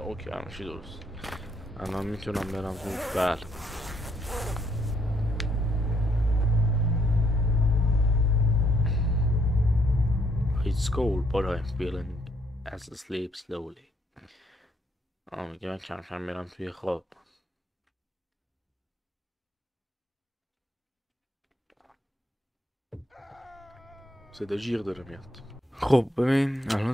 همشی درست. الان میتونم برم تو. بله It's cold but I'm feeling as I sleep slowly. میگه من کم کم میرم توی خواب. صدا جیغ داره میاد. خب ببین الان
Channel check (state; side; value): normal; both; correlation 0.71